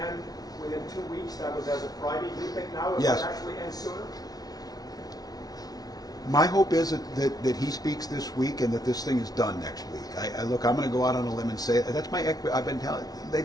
within 2 weeks. That was as of Friday. Do you think now it Yes. will actually end sooner? My hope is that he speaks this week and that this thing is done next week. Look, I'm going to go out on a limb and say that's my. I've been telling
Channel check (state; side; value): late; right; 0.19 ms